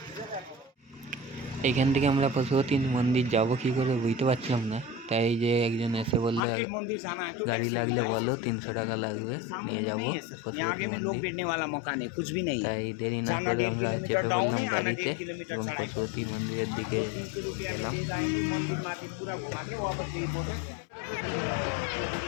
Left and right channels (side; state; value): right; drops out; at 6.4 s